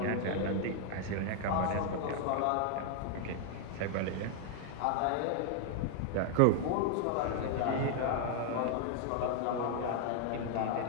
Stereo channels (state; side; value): different; both; correlation 0.00